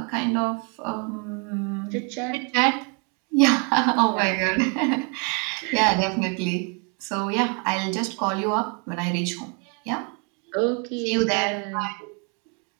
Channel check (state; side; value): quieter; left; 36.4 dB